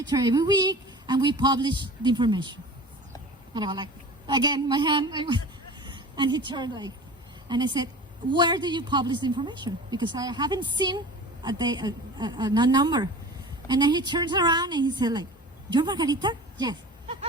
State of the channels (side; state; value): both; normal; correlation 0.38